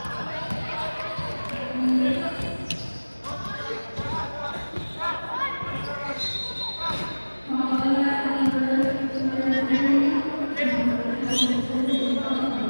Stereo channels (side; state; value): both; inverted; correlation -1.00